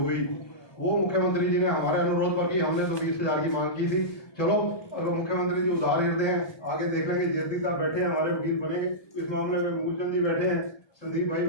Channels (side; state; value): right; late; 1.2 ms